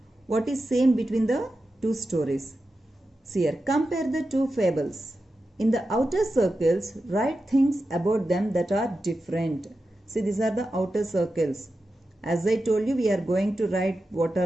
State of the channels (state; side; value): normal; both; correlation 0.91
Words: what is same between the two stories. See here, compare the two fables. In the outer circles, write things about them that are different. See, these are the outer circles. As I told you, we are going to write what